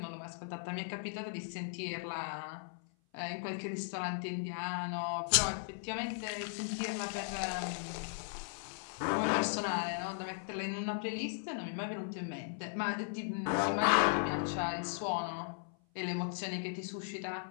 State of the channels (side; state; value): right; silent; 53 dB below the other